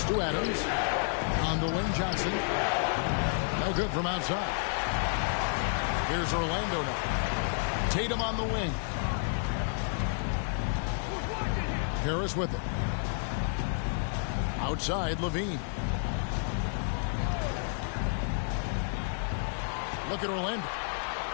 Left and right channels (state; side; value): silent; right; 57 dB below the other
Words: to Adams. On the wing, Johnson. No good from outside. Here's Orlando now. Tatum on the wing. Harris with it. Outside, Levine. Look at Orlando.